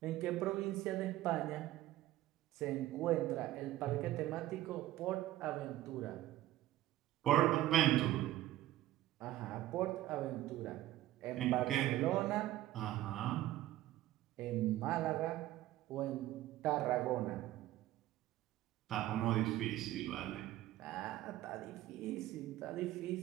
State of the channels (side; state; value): left; quieter; 14.8 dB